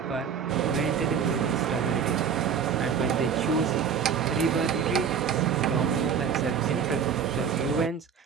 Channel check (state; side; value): quieter; left; 7.1 dB